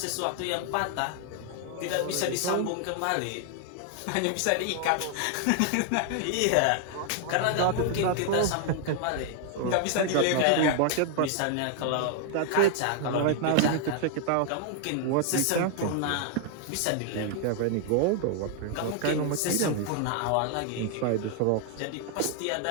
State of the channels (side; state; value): both; different; correlation 0.00